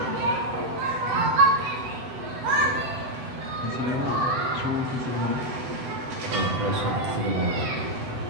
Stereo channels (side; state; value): left; late; 7.9 ms